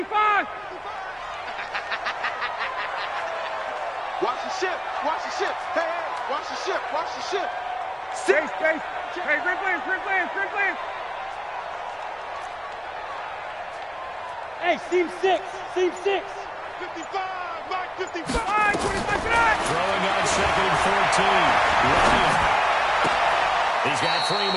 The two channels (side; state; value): both; identical; correlation 1.00